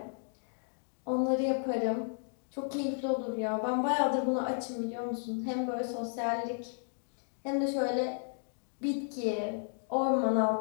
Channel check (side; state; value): right; silent; digital silence